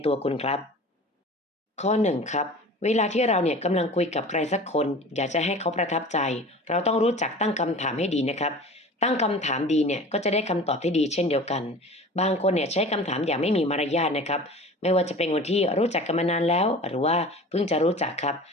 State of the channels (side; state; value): both; normal; correlation 0.39